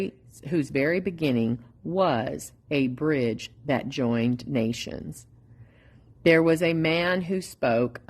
beginning was a bridge that joined nations. There was a man who spoke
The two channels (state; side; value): identical; both; correlation 1.00